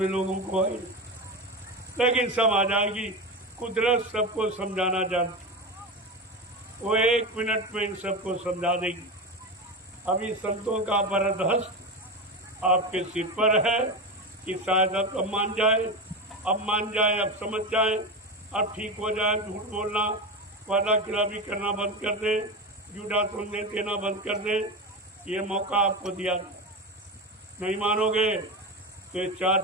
लोगों को आई, लेकिन सब आ जाएगी। कुदरत सबको समझाना जानती, वो 1 मिनट में इन सबको समझा देगी। अभी संतों का वरद हस्त आपके सिर पर है कि शायद अब मान जाए, अब समझ जाए, अब ठीक हो जाए। झूठ बोलना, वादा खिलाफी करना बंद कर दे, झूठा संदेश देना बंद कर दे। ये मौका आपको दिया, नहीं मानोगे तो ये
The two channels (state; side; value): normal; both; correlation 0.20